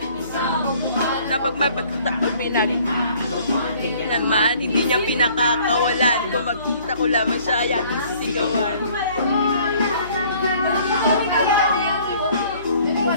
Na pag may pagkataon naman, hindi niya pinakakawalan. Kung magkita ko lamang siya, ay aking sisigawan.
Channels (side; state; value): both; inverted; correlation -0.56